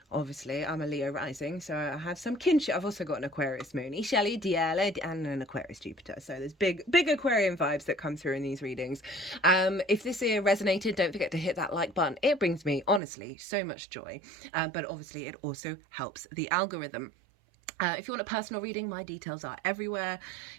Obviously, I'm a Leo rising, so I have some kinship. I've also got an Aquarius moon, Ishali, Diele, and an Aquarius Jupiter. So there's big Aquarian vibes that come through in these readings. If this here resonated, don't forget to hit that like button. It brings me, honestly, so much joy. But obviously, it also helps the algorithm. If you want a personal reading, my details are everywhere.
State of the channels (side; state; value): left; drops out; at 13.0 s